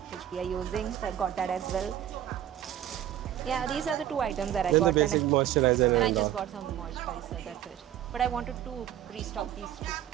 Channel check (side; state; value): left; quieter; 11.6 dB